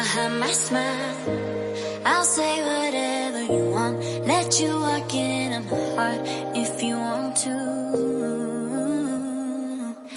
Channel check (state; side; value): identical; both; correlation 1.00